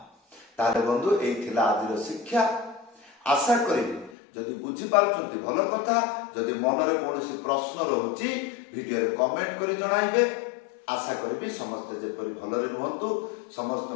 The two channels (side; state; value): right; drops out; at 4.1 s